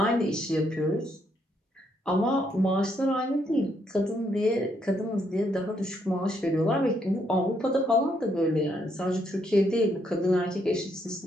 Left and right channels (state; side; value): normal; both; correlation 0.74